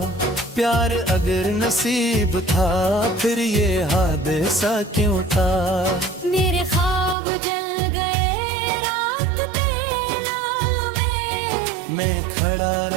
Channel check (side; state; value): left; drops out; at 7.2 s